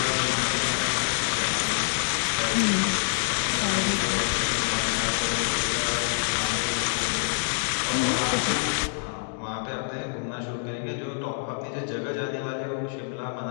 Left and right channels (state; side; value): silent; right; digital silence